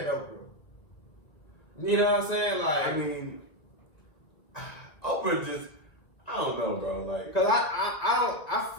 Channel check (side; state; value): right; late; 1.7 ms